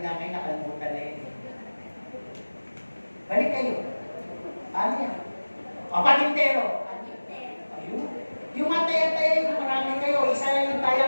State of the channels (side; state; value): both; inverted; correlation -1.00